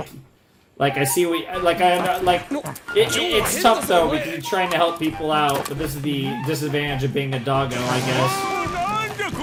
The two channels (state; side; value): identical; both; correlation 1.00